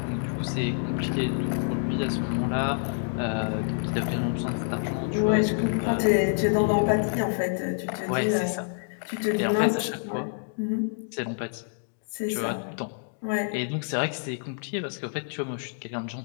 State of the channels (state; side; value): silent; right; digital silence